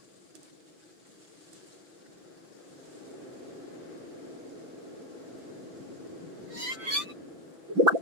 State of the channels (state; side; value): late; left; 5.9 ms